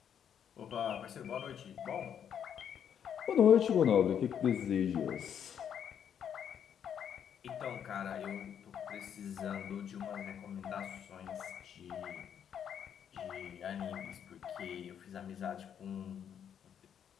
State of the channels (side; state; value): right; quieter; 8.6 dB